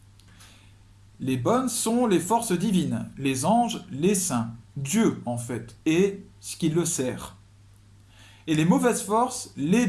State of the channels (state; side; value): identical; both; correlation 1.00